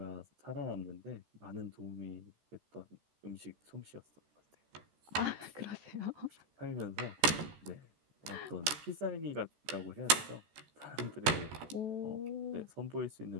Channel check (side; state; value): left; late; 14 ms